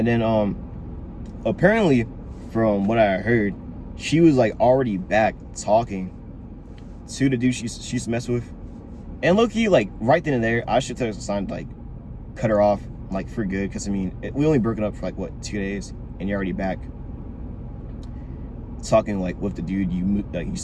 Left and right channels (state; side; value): identical; both; correlation 1.00